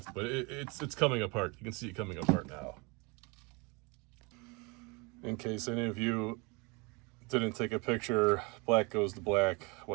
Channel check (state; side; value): quieter; left; 28.7 dB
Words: But it's coming apart. You can see it coming apart now. In case any of you didn't take a picture, black goes to black,